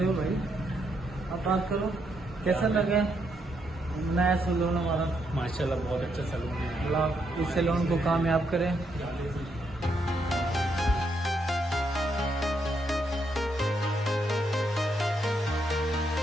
हो भाई। आप बात करो, कैसा लगा नया सैलून हमारा? माशाल्लाह बहुत अच्छा सैलून है। अल्लाह इस सैलून को कामयाब करें।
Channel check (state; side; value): normal; both; correlation 0.77